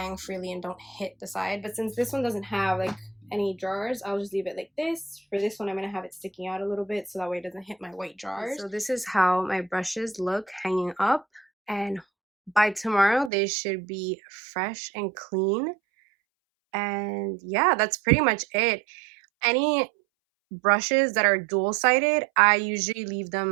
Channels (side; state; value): left; drops out; at 13.3 s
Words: freely and don't hit the side. But since this one doesn't have like any drawers, I'll just leave it like this. For this one, I'm gonna have it sticking out a little bit so that way it doesn't hit my white drawers. So this is how my brushes look hanging up, and by tomorrow they should be fresh and clean. And yeah, that's pretty much it. Any brushes that are dual-sided, I usually leave